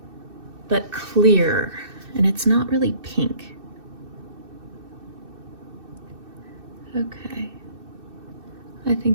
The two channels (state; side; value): late; left; 2.6 ms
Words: but clear, and it's not really pink. Okay. I